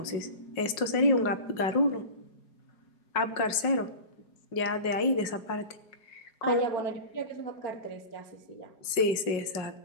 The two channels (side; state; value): right; late; 5.4 ms